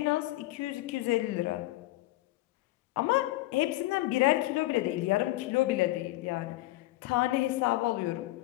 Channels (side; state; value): right; quieter; 18.1 dB